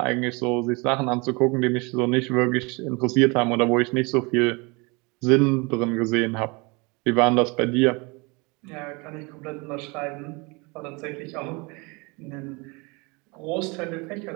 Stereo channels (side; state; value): left; quieter; 28.1 dB